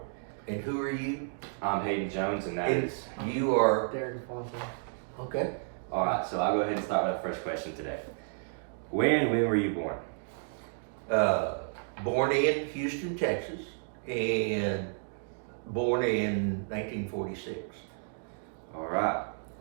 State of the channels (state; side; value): silent; left; digital silence